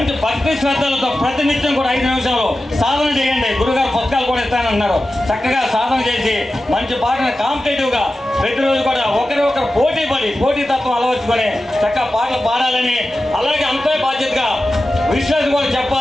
భక్తి శ్రద్ధలతో ప్రతినిత్యం కూడా 5 నిమిషాలు సాధన చేయండి. గురుగారు పుస్తకాలు కూడా ఇస్తానన్నారు. చక్కగా సాధన చేసి మంచి పాటను కాంపిటేటివ్గా ప్రతిరోజు కూడా ఒకరు పోటీతత్వం అలవర్చుకొని చక్కగా పాటలు పాడాలని, అలాగే అంతే బాధ్యతగా విశ్వాసం కూడా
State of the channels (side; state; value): both; normal; correlation 0.93